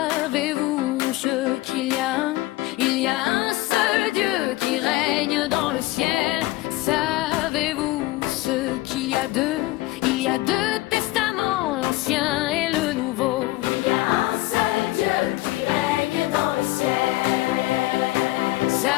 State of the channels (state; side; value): quieter; right; 18.8 dB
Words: ce qu'il y a? Il y a un seul Dieu qui règne dans le ciel. Savez-vous ce qu'il y a deux? Il y a deux testaments, l'Ancien et le Nouveau. Il y a un seul Dieu qui règne dans le ciel.